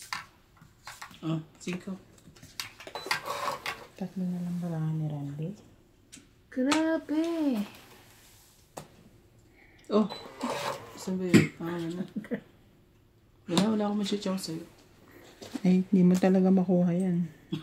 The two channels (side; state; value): both; identical; correlation 1.00